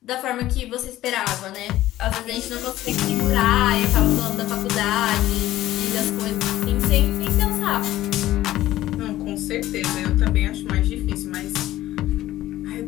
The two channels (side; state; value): right; quieter; 14.9 dB